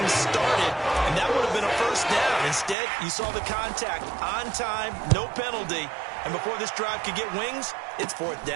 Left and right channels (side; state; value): left; drops out; at 2.8 s